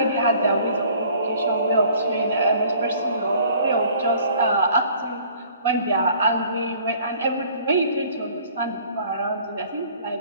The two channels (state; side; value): inverted; both; correlation -0.54